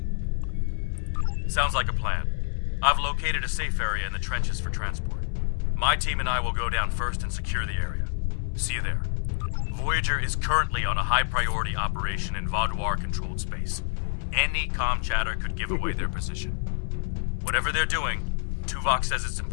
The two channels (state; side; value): silent; right; 60 dB below the other